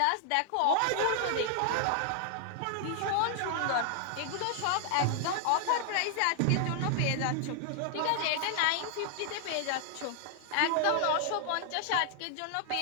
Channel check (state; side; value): different; both; correlation 0.00